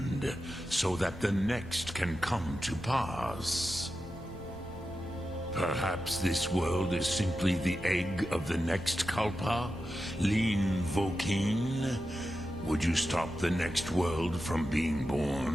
so that the next can come to pass. Perhaps this world is simply the egg of the next Kalpa? Lean Vokeen? Would you stop the next world from being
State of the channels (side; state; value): both; normal; correlation 0.91